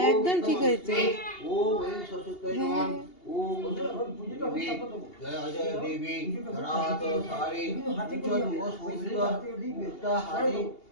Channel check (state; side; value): late; right; 2.8 ms